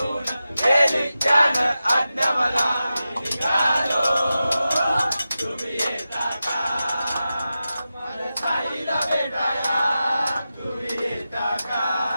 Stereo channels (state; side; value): inverted; both; correlation -0.93